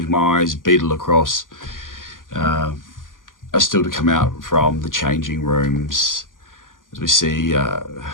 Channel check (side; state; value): right; late; 0.89 ms